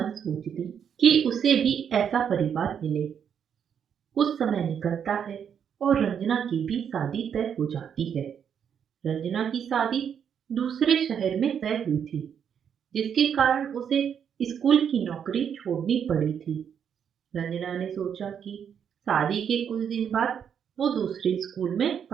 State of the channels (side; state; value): left; quieter; 8.0 dB